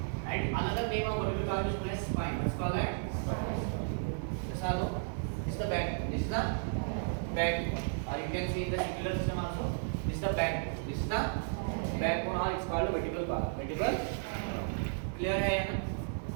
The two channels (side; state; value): left; silent; digital silence